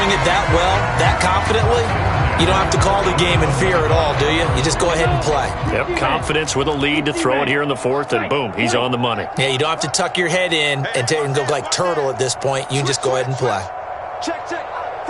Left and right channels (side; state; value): both; identical; correlation 1.00